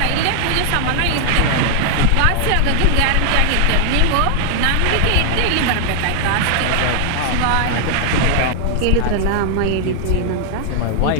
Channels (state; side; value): different; both; correlation 0.00